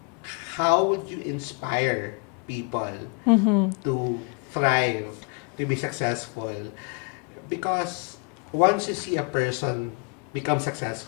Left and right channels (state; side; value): quieter; right; 33.7 dB